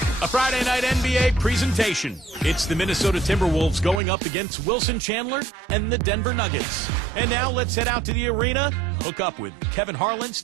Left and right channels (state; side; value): drops out; left; at 4.0 s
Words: a Friday night NBA presentation. It's the Minnesota Timberwolves going up against Wilson Chandler and the Denver Nuggets. And now let's head out to the arena, hook up with Kevin Harlan,